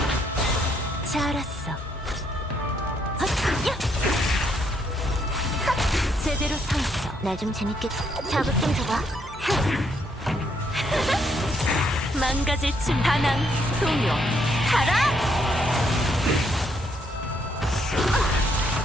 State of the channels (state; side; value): normal; both; correlation 0.73